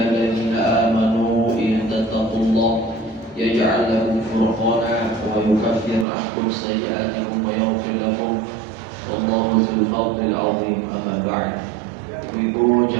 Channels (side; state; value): left; drops out; at 6.1 s